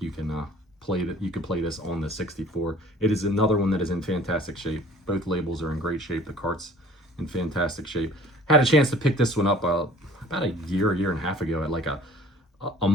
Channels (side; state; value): both; normal; correlation 0.51